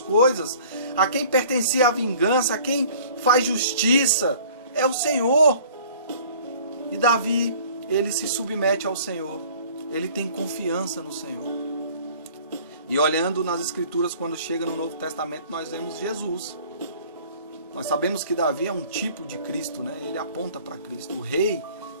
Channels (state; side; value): inverted; both; correlation -0.51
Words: a quem pertencia a vingança, a quem faz justiça, é o Senhor. E Davi, ele se submete ao Senhor, ele tem confiança no Senhor. E olhando nas Escrituras, quando chega no Novo Testamento, nós vemos Jesus. Nós sabemos que Davi é um tipo de Cristo, né? Ele aponta para Cristo. O rei,